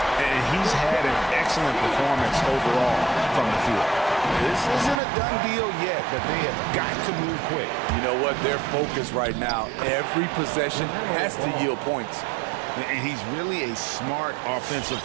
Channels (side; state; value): left; drops out; at 5.0 s